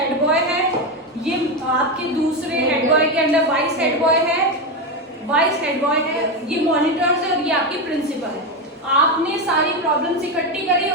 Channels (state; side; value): normal; both; correlation 0.12